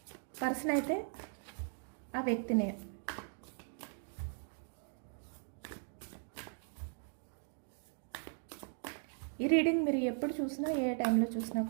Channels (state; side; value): silent; left; 52 dB below the other